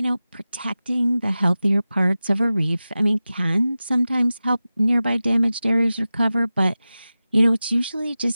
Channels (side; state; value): both; inverted; correlation -0.95